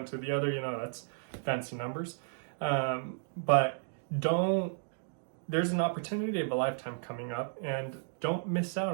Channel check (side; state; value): left; silent; digital silence